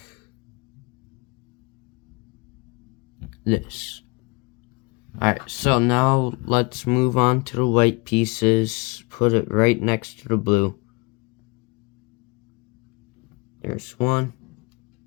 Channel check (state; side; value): quieter; right; 27.3 dB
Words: this. Alright, so now let's move on to the white pieces. Put it right next to the blue. There's one.